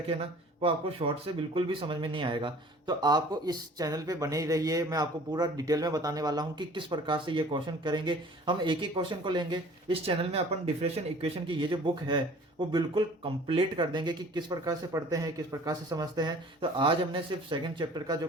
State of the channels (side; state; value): both; normal; correlation 0.49